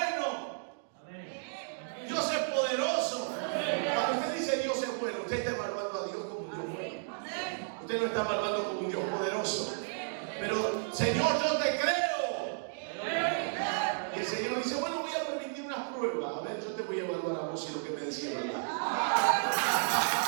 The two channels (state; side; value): silent; left; digital silence